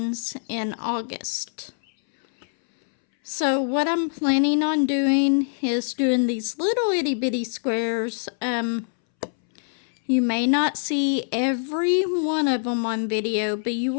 in August. So what I'm planning on doing is doing these little itty bitty squares. You may not see every one of them on video, but you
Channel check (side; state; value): right; silent; 63 dB below the other